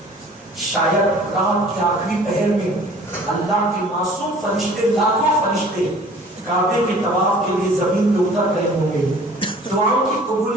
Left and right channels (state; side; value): normal; both; correlation 0.50